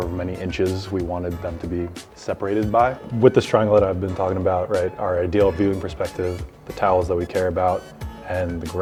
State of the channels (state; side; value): identical; both; correlation 1.00